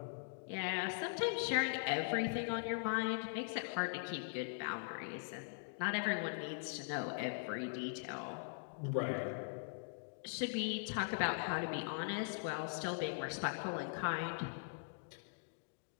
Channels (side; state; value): right; silent; digital silence